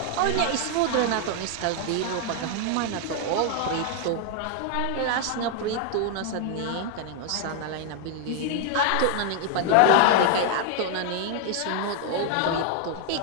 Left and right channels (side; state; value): both; different; correlation 0.00